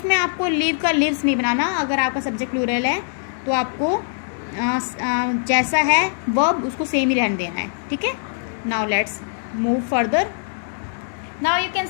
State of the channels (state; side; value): silent; right; digital silence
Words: आपको live का lives नहीं बनाना. अगर आपका subject plural है तो आपको जैसा है verb उसको सेम ही रहने देना है, ठीक है. now let's move further. now you can